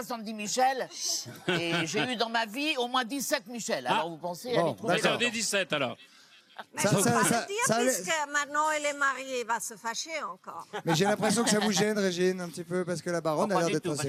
Michel. Et j'ai eu dans ma vie au moins 17 Michel. Alors vous pensez, elle est trop Bah, belle. j'en ai 17 alors. Mais Ça- je ça- peux pas ça- le dire, ça allait- puisque maintenant elle est mariée, il va se fâcher encore. Mais j'ai l'impression que ça vous gêne, Régine, un petit peu, parce que la Baronne Non, a pas l'air du d'être tout, pas assez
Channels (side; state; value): both; identical; correlation 1.00